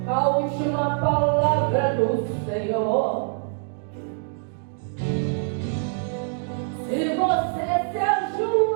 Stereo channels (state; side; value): silent; left; digital silence